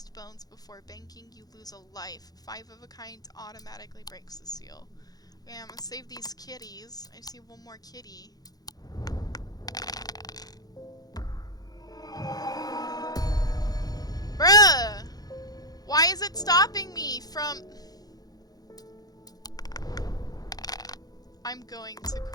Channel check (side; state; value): right; late; 0.19 ms